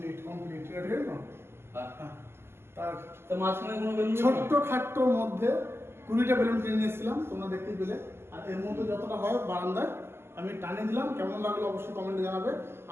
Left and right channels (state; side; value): late; left; 0.12 ms